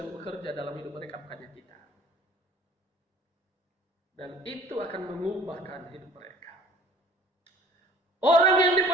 bekerja dalam hidup mereka, bukannya kita. Dan itu akan mengubahkan hidup mereka. Orang yang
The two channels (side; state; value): both; normal; correlation 0.49